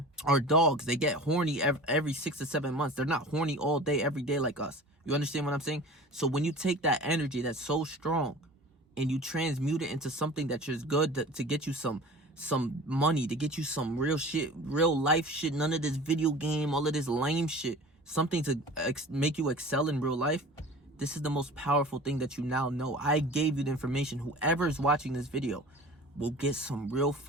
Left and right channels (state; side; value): normal; both; correlation 0.40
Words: Our dogs, they get horny every 6 to 7 months. They're not horny all day, every day like us. You understand what I'm saying? So when you take that energy that's so strong and you transmute it into something that's just good to get you some money, to get you some real shit, real life shit, none of this video game, all of this lame shit, something to make you excel in real life, This is the most powerful thing that you now know. I gave you the information. Whoever is watching this video will get some real